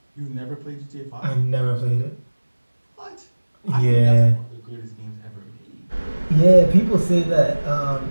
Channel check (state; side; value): inverted; both; correlation -1.00